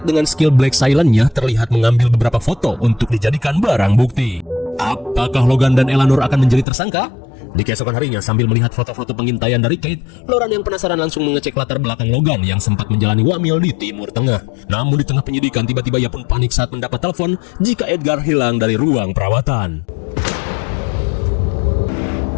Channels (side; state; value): right; drops out; at 6.7 s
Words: dengan skill Black Silent-nya terlihat mengambil beberapa foto untuk dijadikan barang bukti. Apakah Logan dan Eleanor akan menjadi tersangka? Di keesokan harinya, sambil melihat foto-foto pengintaian dari Kate, Lauren yang penasaran langsung mengecek latar belakang Logan yang sempat menjalani wamil di Timur Tengah. Namun di tengah penyidikan, tiba-tiba ia pun panik saat mendapat telepon jika Edgar hilang dari ruang perawatan.